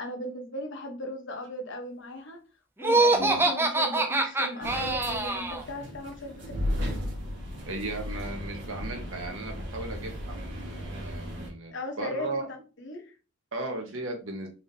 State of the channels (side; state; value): both; normal; correlation 0.30